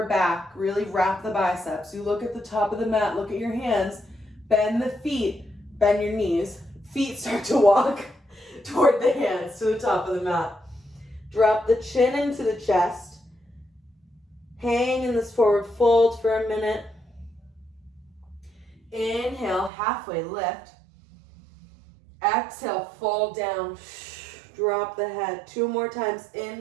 back. Really wrap the biceps. You look at the top of the mat. Look at your hands. Bend the feet. Bend your knees. Feet start to walk toward the hands to the top of the mat. Drop the chin into the chest. Hang in this forward fold for a minute. Inhale, halfway lift. Exhale, fold down. Drop the head. 2 more times.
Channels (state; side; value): drops out; left; at 19.7 s